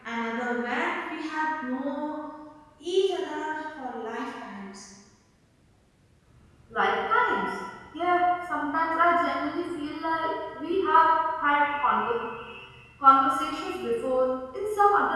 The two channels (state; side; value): identical; both; correlation 1.00